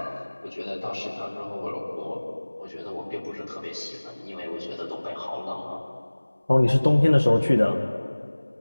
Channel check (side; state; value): both; inverted; correlation -1.00